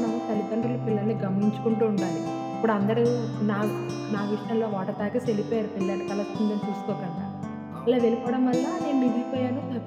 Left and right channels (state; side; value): identical; both; correlation 1.00